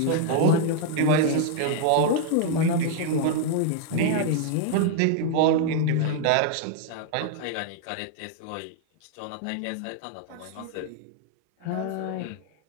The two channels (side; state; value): both; different; correlation 0.00